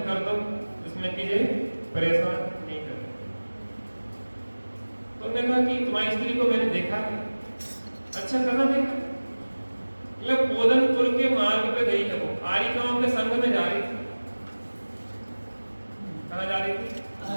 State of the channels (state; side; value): inverted; both; correlation -1.00